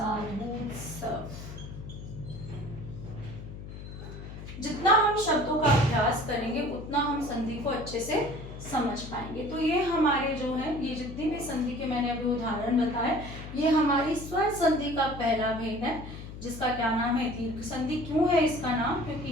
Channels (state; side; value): noise; left; hum, 11 dB below the sound